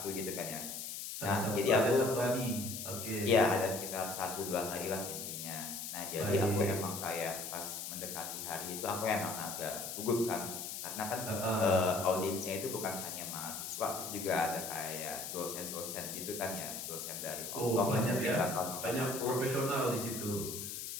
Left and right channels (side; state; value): left; noise; hiss, 6 dB below the sound